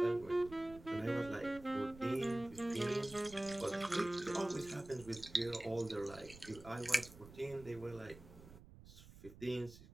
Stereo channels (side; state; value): right; noise; rumble, 18 dB below the sound